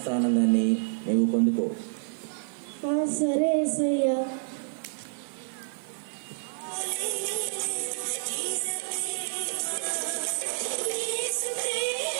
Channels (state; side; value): silent; left; 59 dB below the other